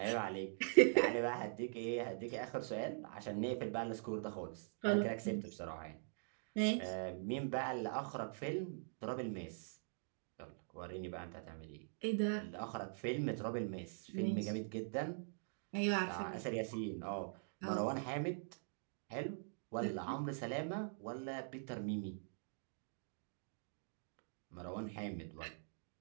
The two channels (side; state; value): left; silent; digital silence